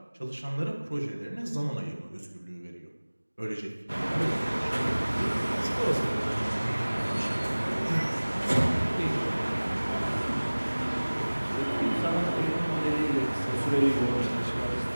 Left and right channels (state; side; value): inverted; both; correlation -1.00